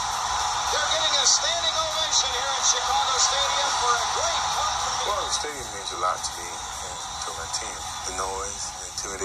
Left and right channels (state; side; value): identical; both; correlation 1.00